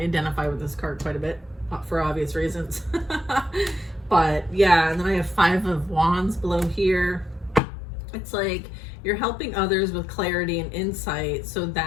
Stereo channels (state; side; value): drops out; right; at 7.6 s